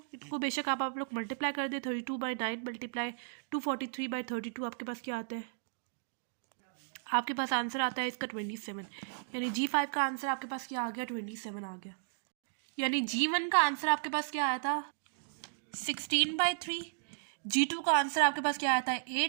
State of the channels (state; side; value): silent; left; digital silence